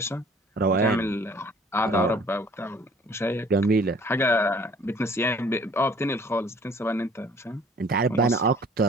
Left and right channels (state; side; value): normal; both; correlation 0.54